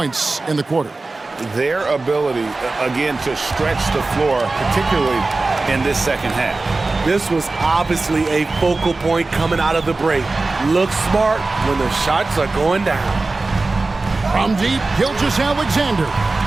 in the quarter. Their ability, again, to stretch the floor, particularly in this second half. This was obviously a focal point coming out of the break. Look smart when the shots are going down. From deep, Gilgeous-Alexander.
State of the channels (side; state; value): left; quieter; 3.4 dB